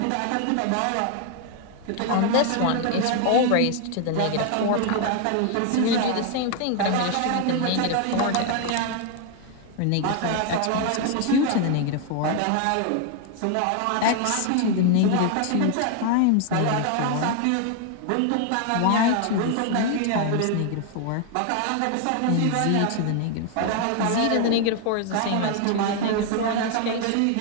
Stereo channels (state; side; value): different; both; correlation 0.00